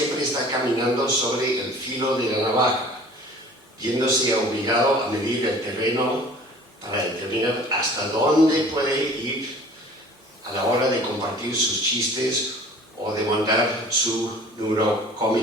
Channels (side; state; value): both; normal; correlation 0.46